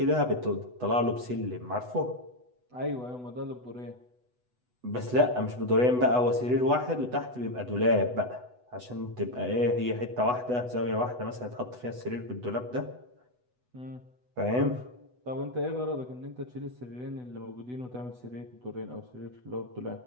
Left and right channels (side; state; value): left; late; 8.1 ms